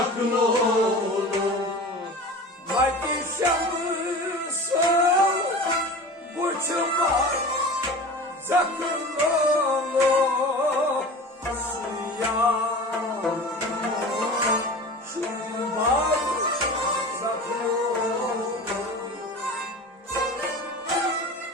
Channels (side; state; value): both; normal; correlation 0.35